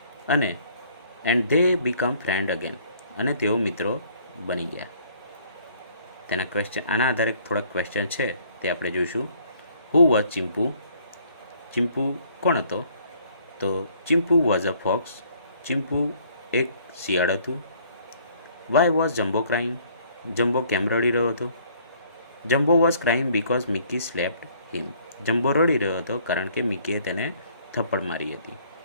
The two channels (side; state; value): both; inverted; correlation -0.60